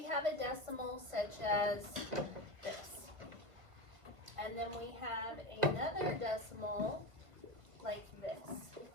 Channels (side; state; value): left; late; 1.5 ms